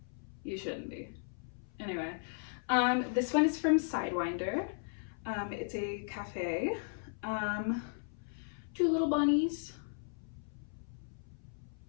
You shouldn't be. Anyway, this one is from Sidewinder. It's a cafe. 2 little bunnies.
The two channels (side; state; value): right; silent; 54 dB below the other